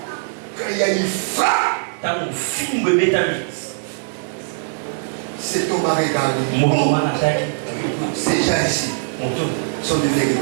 Quand il y a une frappe, cet homme a regardé. Ces gens ici sont de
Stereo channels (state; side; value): silent; left; digital silence